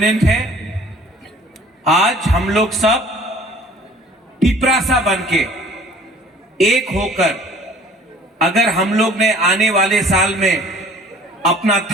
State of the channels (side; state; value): both; normal; correlation 0.51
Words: है। आज हम लोग सब तिपरासा बनके एक होकर अगर हम लोग ने आने वाले साल में अपना